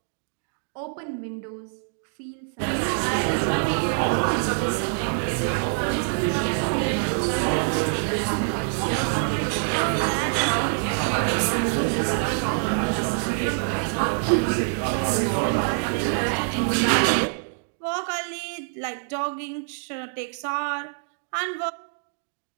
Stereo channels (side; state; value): left; silent; 62 dB below the other